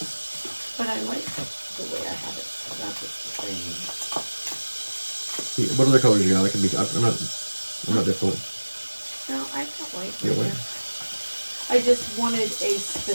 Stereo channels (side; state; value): both; inverted; correlation -1.00